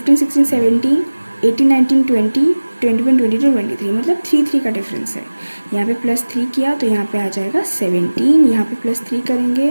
16 17 18 19 20 21 22 23, मतलब 3 का डिफरेंस है। यहाँ पे +3 किया तो यहाँ पे आ जाएगा 17। यहाँ पे +3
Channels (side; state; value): both; inverted; correlation -1.00